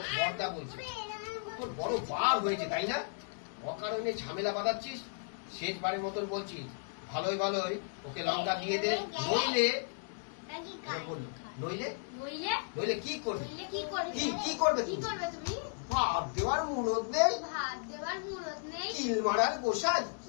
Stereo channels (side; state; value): right; silent; digital silence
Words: বড়দা বলছে, তোর বড় বার হয়েছে তাই না, অকারণে ঝামেলা বাঁধাচ্ছিস, শেষবারের মতন বলছি, ভালোই ভালোই ওকে লঙ্কা দিয়ে দে, নইলে বললো নইলে কি করবে, কি করবে তুমি? ভাত দেওয়ার মুরত নেই, কিল মারার গোসাই।